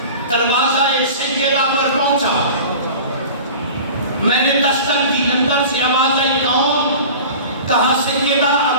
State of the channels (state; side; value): inverted; both; correlation -0.38